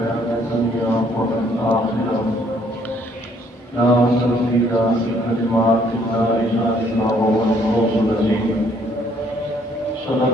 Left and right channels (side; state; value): both; normal; correlation 0.64